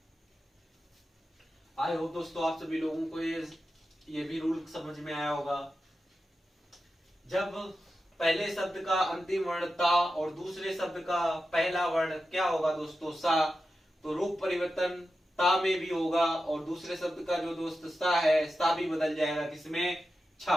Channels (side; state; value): both; normal; correlation 0.91